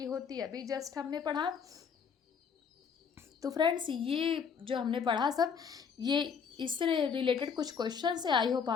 होती है, अभी जस्ट हमने पढ़ा। तो फ्रेंड्स ये जो हमने पढ़ा सब, ये इससे रिलेटेड कुछ क्वेश्चन है। आई होप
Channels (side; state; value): right; quieter; 6.5 dB